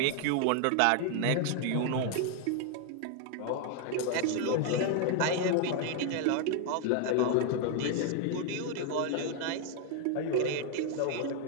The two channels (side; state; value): both; different; correlation 0.00